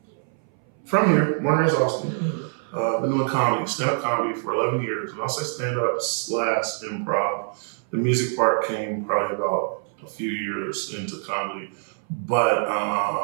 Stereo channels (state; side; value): silent; left; 59 dB below the other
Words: from here, born and raised Austin. Been doing comedy, stand-up comedy for 11 years. And I'll say stand-up / improv. The music part came probably about a few years into comedy.